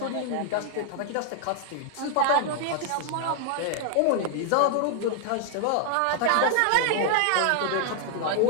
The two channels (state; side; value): different; both; correlation 0.00